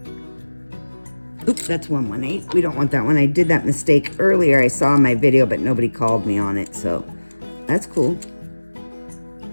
Oops, that's 118. We don't want that one. I did that mistake earlier. I saw in my video, but nobody called me on it, so that's cool.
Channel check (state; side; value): inverted; both; correlation -1.00